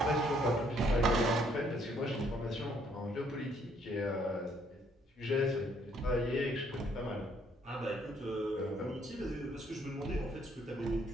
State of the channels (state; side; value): normal; both; correlation 0.67